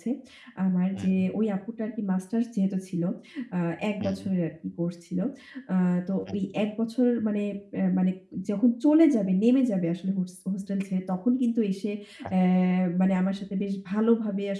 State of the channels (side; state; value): both; identical; correlation 1.00